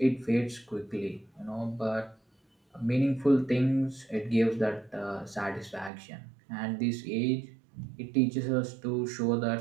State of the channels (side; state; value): left; drops out; at 5.9 s